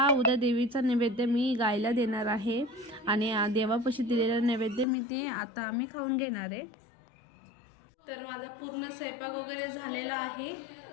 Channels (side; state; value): right; drops out; at 4.9 s